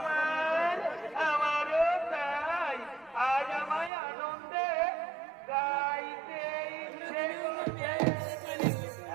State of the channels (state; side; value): drops out; left; at 3.9 s